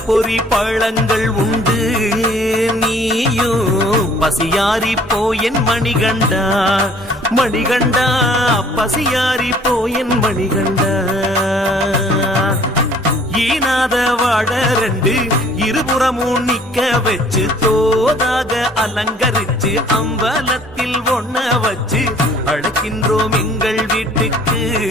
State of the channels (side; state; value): both; normal; correlation 0.56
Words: பொறி பழங்கள் உண்டு நீயும் பசியாரி போயன் மணிகண்டா மணிகண்டா பசியாரி போயன் மணிகண்டா ஈனாத வாழ ரெண்டு இருபுறமும் நிக்க வச்சு தோதாக அலங்கரிச்சு அம்பலத்தில் ஒண்ண வச்சு அழைக்கின்றோம் எங்கள் வீட்டுக்கு